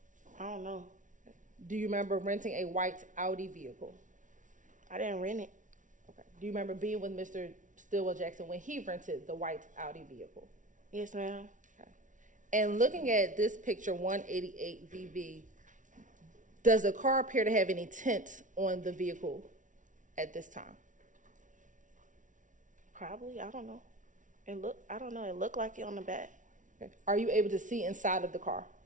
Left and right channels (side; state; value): left; late; 0.37 ms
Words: I don't know. Do you remember renting a white Audi vehicle? I didn't rent it. Okay. Do you remember being with Mr. Stillwell Jackson when he rented the white Audi vehicle? Yes, ma'am. Okay. And looking at this picture, 188 VV, does the car appear to have any tint on the vehicle at this time? Probably. I don't know. I don't know. It looked like it on the back. Okay. Are you able to see inside of the car